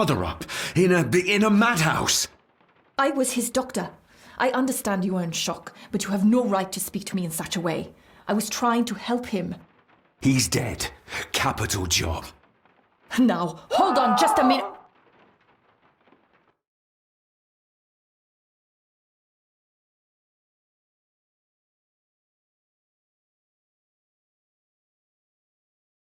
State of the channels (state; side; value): identical; both; correlation 1.00